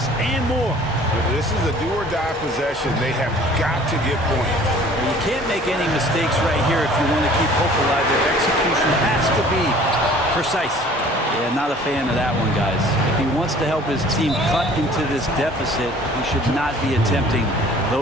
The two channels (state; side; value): normal; both; correlation 0.51